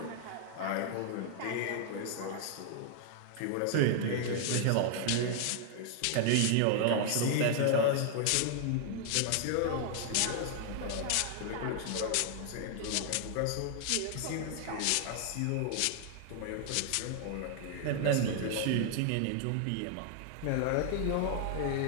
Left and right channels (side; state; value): both; different; correlation 0.00